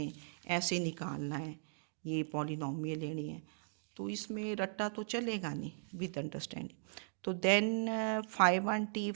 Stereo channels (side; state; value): left; silent; digital silence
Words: ऐसे निकालना है, ये पॉलिनोमियल लेनी है, तो इसमें रट्टा तो चलेगा नहीं विद अंडरस्टैंडिंग। तो then phi 1t,